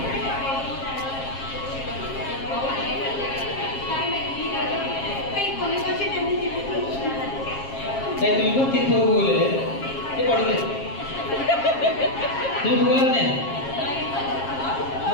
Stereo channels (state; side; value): late; right; 7.4 ms